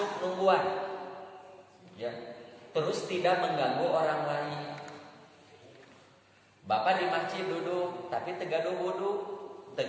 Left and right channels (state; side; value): identical; both; correlation 1.00